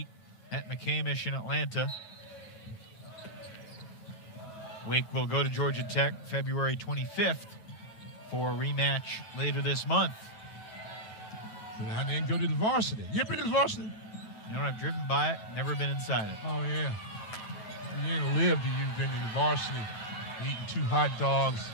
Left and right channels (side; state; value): right; late; 9.2 ms